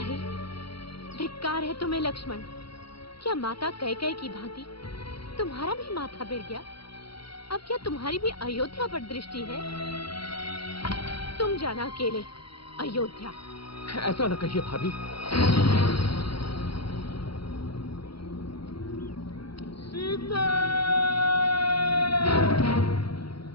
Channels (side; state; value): right; late; 0.74 ms